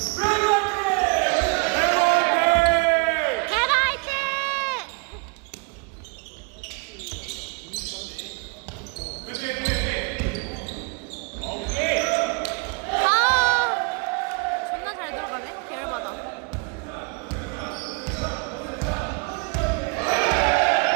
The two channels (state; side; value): quieter; left; 33.7 dB